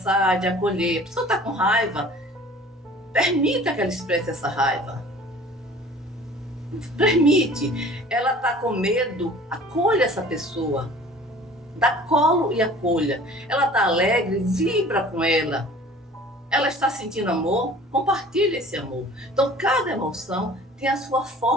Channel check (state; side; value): normal; both; correlation 0.47